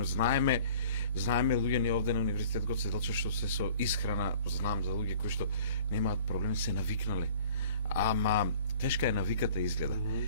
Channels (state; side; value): inverted; both; correlation -0.49